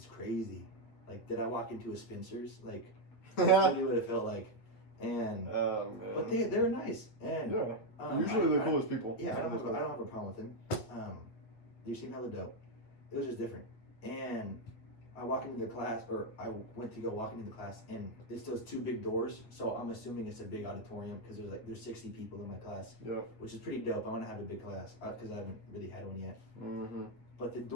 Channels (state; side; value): late; right; 9.3 ms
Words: crazy. Like, did I walk into a Spencer's? Like, that's really what it felt like. And but they were nice, and usually the coolest people. Yeah, I don't have a problem with them. They seem hella dope. It was just different. And I walk into the class, or I went to go walk into the class, and it's those 2 big doors. So I'm assuming it's a big auditorium because there's 60 people in my class. Yeah. Which is pretty dope. I want to have a big class because I haven't really had one yet. But the